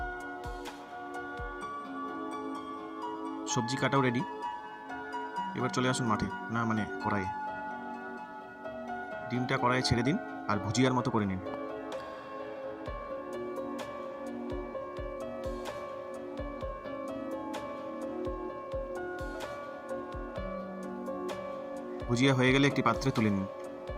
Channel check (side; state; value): both; identical; correlation 1.00